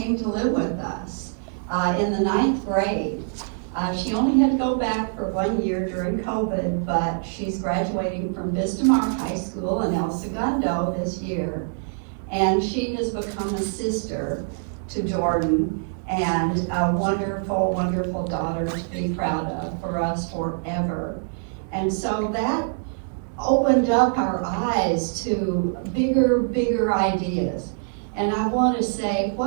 to live with us in the 9th grade. She only had to go back for 1 year during COVID, but she's graduating from Vistamar High School in El Segundo this year. And she has become a sister to Jordan and a wonderful, wonderful daughter to be proud of for us forever. And so that opened up our eyes to bigger ideas. And I want to say,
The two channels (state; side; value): silent; left; digital silence